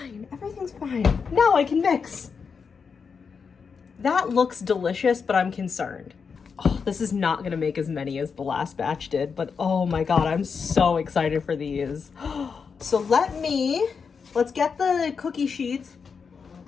Everything's fine. Now I can mix. That looks delicious, but I'm concerned. Oh, this is not going to make as many as the last batch did, but oh my God, I'm so excited for these. So let's get the cookie sheets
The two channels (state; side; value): quieter; right; 5.8 dB